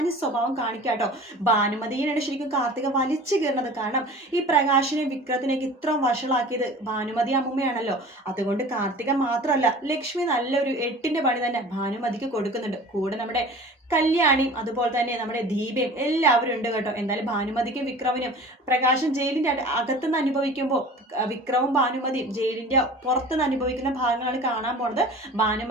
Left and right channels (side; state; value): both; normal; correlation 0.41